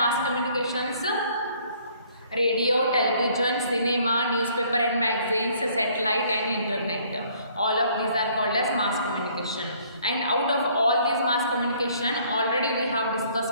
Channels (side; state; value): both; inverted; correlation -0.61